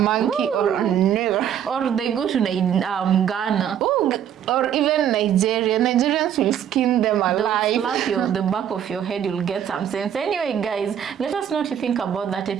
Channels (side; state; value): left; quieter; 9.5 dB